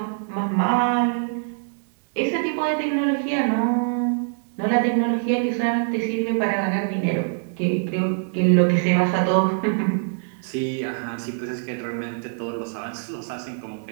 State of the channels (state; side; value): silent; left; digital silence